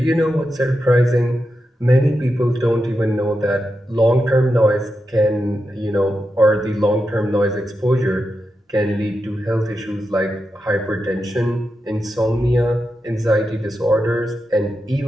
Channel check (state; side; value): normal; both; correlation 0.88